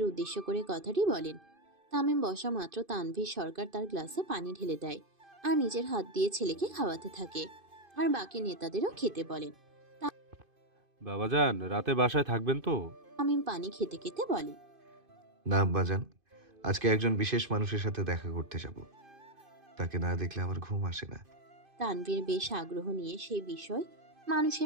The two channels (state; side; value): late; left; 2.5 ms